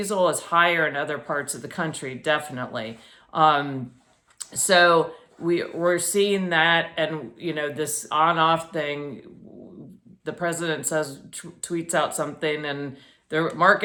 is higher in other parts of the country, definitely. So we're seeing that, and you know, this on-off thing. The president says, tweets out something, and the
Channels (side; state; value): both; identical; correlation 1.00